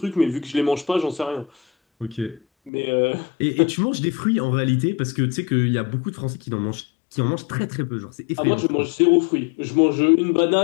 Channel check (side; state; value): right; drops out; at 2.7 s